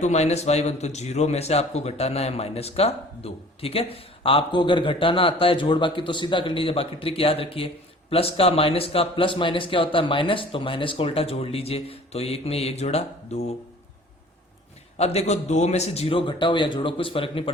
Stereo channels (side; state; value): both; normal; correlation 0.48